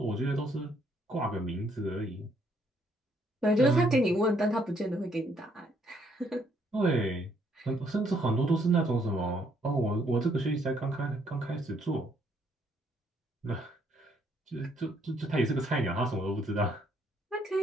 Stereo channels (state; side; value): normal; both; correlation 0.69